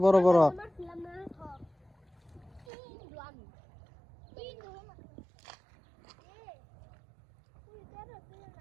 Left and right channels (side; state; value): left; drops out; at 2.7 s